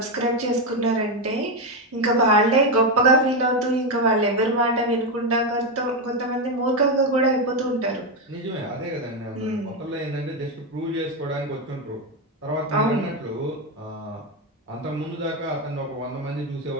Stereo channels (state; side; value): normal; both; correlation 0.08